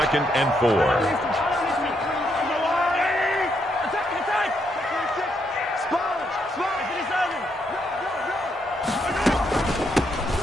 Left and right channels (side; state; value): both; normal; correlation 0.77